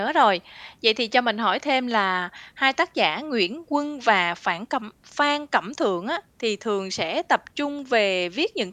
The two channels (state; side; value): identical; both; correlation 1.00